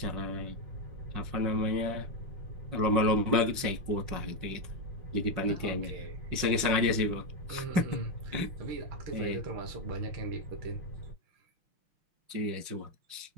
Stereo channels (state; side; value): late; left; 5.6 ms